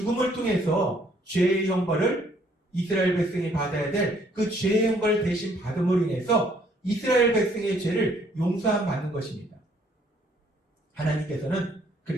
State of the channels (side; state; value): both; normal; correlation 0.64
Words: 통해서 죄의 형벌을 이스라엘 백성이 받아야 될 그 죄의 형벌을 대신 받음으로 인해서 이스라엘 백성의 죄를 용서함 받는 것입니다. 하나님께서는